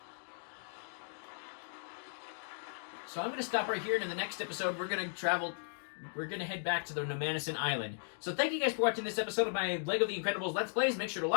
So I'm going to stop right here, and in the next episode, we're going to head back to the Nomanison Island. So thank you guys for watching this episode of my LEGO The Incredibles Let's Plays. Make sure to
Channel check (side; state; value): right; silent; digital silence